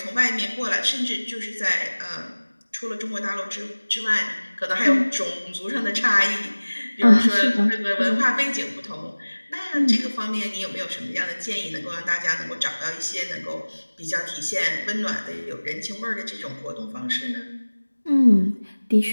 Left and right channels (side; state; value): both; inverted; correlation -1.00